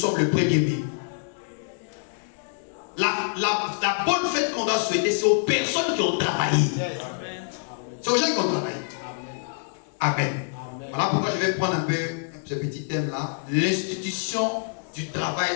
le 1er mai. La bonne fête qu'on doit souhaiter, c'est aux personnes qui ont travaillé. C'est aux gens qui ont travaillé. Amen. Voilà pourquoi je vais prendre un peu ce petit thème-là. L'institution du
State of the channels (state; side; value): silent; right; 59 dB below the other